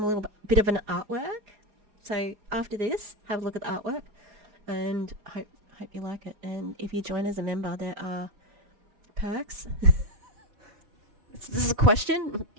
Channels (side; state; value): left; late; 4.8 ms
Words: little bit of an artwork. So after this, have a look at the artwork, and hope you like it. And if you join as a member, there are perks. This is a question?